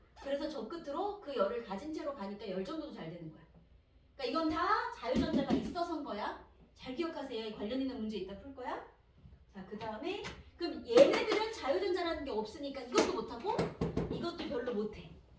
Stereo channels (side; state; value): both; identical; correlation 1.00